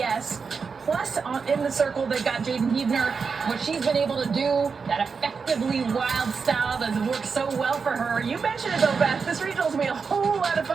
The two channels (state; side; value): quieter; left; 5.3 dB